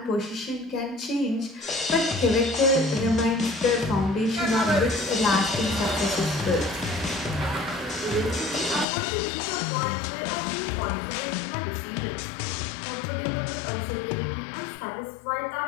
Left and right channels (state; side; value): drops out; right; at 8.8 s